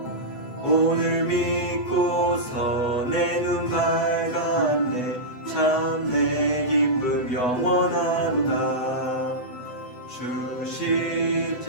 오늘 믿고서 내 눈 밝았네. 참 내 기쁨 영원하도다. 주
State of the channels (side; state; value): right; late; 8.0 ms